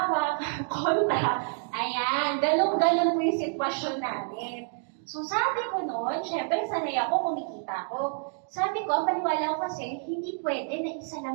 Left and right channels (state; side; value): silent; left; 59 dB below the other